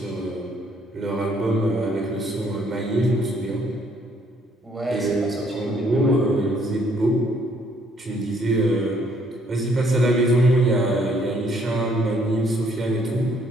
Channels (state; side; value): normal; both; correlation 0.66